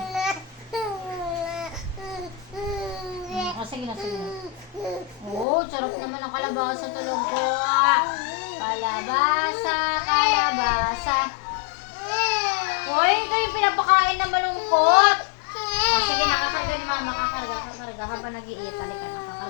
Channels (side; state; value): right; drops out; at 5.5 s